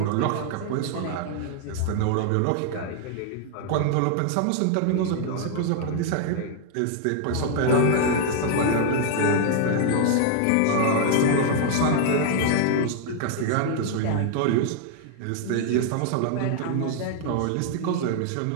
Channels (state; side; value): different; both; correlation 0.00